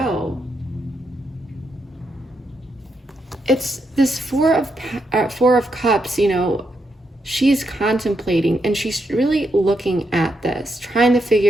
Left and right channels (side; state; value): both; normal; correlation 0.81